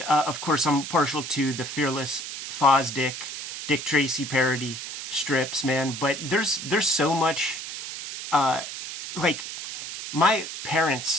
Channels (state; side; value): noise; right; hiss, 8 dB below the sound